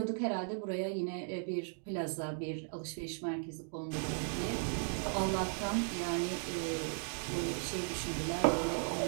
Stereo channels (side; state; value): left; silent; 53 dB below the other